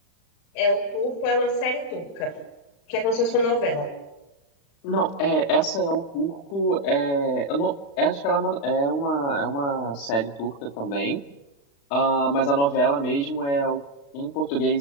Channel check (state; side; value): late; right; 35 ms